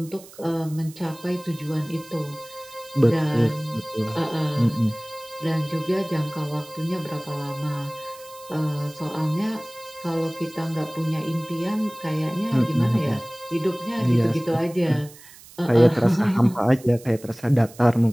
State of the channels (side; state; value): right; noise; hiss, 21 dB below the sound